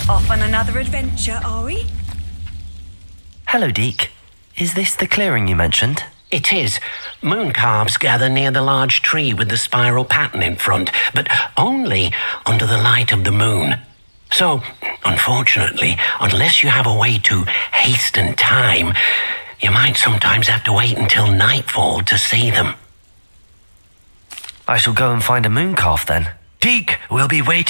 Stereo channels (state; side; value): inverted; both; correlation -1.00